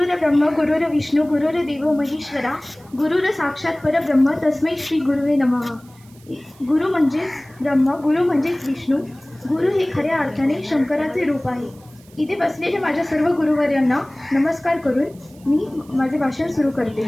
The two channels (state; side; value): noise; right; hiss, 28 dB below the sound